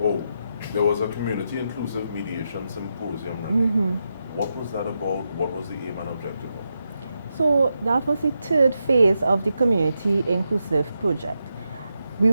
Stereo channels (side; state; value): both; inverted; correlation -0.86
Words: was a community inclusive mediation symposium. Renee. What was that about? What was the aim and objective of it? So that was the third phase of the Community Inclusive Project. We